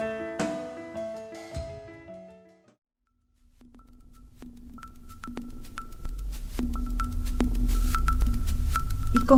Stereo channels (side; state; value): both; identical; correlation 1.00